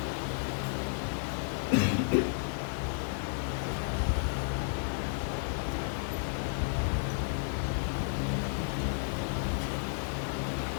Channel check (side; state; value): right; silent; 56 dB below the other